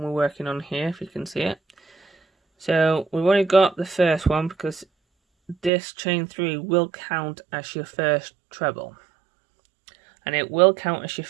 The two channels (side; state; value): left; drops out; at 5.7 s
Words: we're working on here, if you can see it. So we've only got the first one because this chain 3 will count as your first treble, and it will count as your